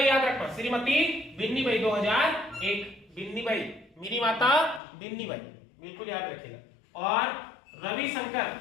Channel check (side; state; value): right; drops out; at 4.8 s